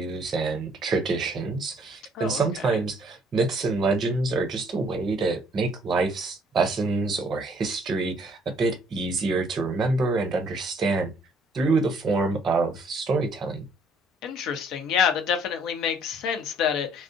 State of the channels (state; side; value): normal; both; correlation 0.62